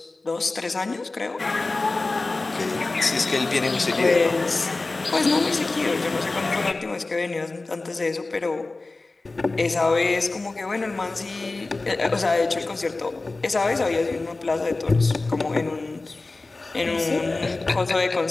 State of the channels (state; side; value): quieter; right; 3.3 dB